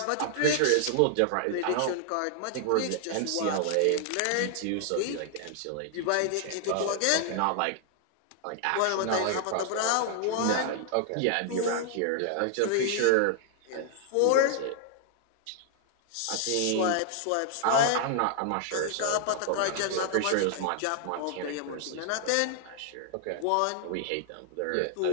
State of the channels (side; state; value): both; different; correlation 0.00